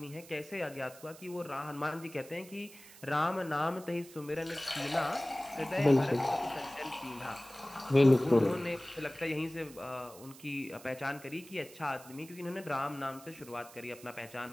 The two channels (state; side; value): noise; right; hiss, 19 dB below the sound